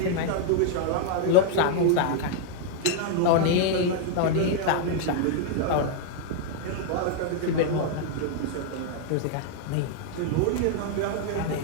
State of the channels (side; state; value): both; different; correlation -0.01